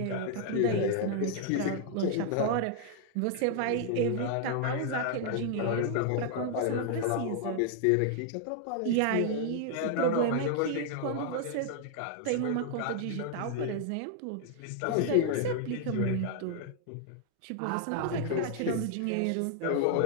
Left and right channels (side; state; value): both; different; correlation 0.00